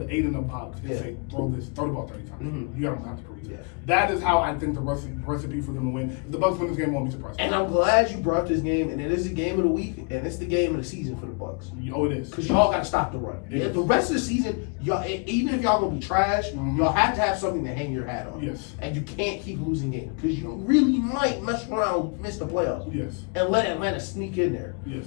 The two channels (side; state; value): right; quieter; 37.2 dB